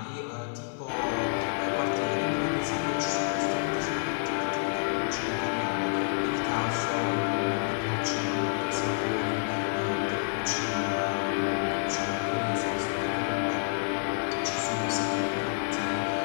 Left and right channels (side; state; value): right; silent; digital silence